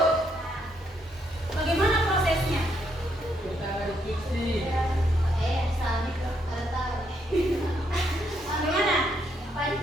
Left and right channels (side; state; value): both; normal; correlation 0.75